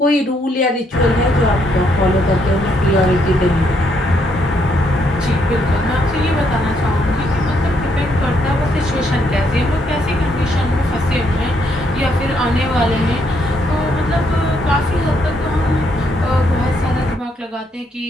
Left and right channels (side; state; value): both; normal; correlation 0.74